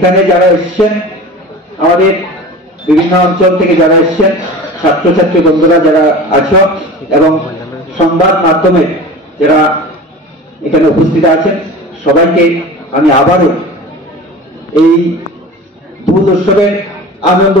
যারা এসছেন আমাদের বিভিন্ন অঞ্চল থেকে যারা এসছেন ছাত্রছাত্রী বন্ধুরা যারা আছো এবং সংবাদ মাধ্যমে যারা এখানে উপস্থিত আছেন সবাইকে আমি আবারও এই দোল উৎসবের আনন্দ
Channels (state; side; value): normal; both; correlation 0.36